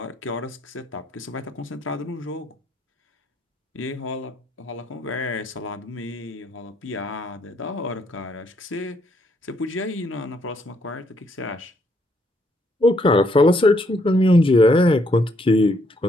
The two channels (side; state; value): both; normal; correlation 0.71